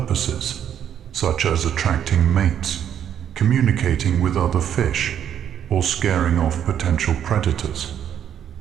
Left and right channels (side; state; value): left; quieter; 9.5 dB